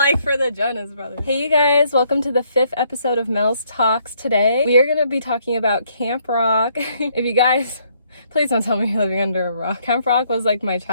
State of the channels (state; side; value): inverted; both; correlation -0.69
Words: for the Jonas Brothers. Hey, you guys, welcome to the 5th episode of Mels Talks. Today, we are going to be talking about Camp Rock. If you guys... Please don't tell me you're living under a rock. Camp Rock was like my